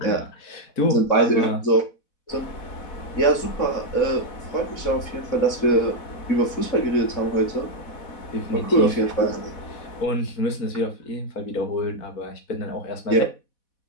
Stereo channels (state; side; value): late; right; 4.1 ms